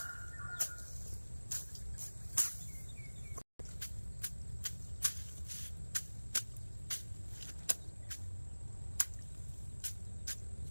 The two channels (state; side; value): inverted; both; correlation -1.00